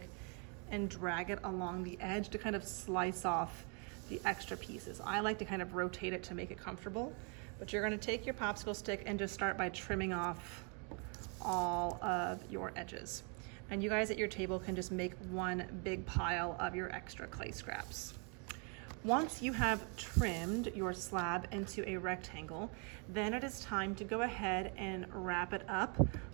and drag it along the edge to kind of slice off the extra pieces. I like to kind of rotate it to make it comfortable, but you're going to take your popsicle stick and just start by trimming off all of your edges. And you guys at your table can just make one big pile of your extra clay scraps. Once you have trimmed your slab into a rectangle, then it is time to go ahead and wrap it up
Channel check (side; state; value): left; quieter; 36.9 dB